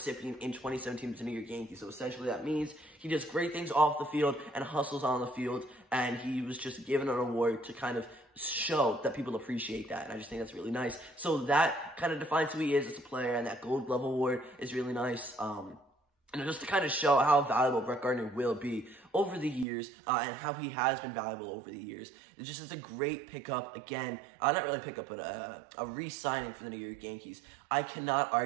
in 2017 with the New York Yankees. So essentially that means he does great things off the field and hustles on the field, and he was just given an award to kind of show that people appreciate that, and I just think that's really nice. So that kind of defines who he is as a player, and that Gold Glove Award is really nice. And just to kind of show how valuable Brett Gardner will be over the years, and how he has been valuable over the years. It just is a great pickup, again, not really pickup, but a re-signing for the New York Yankees. I cannot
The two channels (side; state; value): left; drops out; at 19.7 s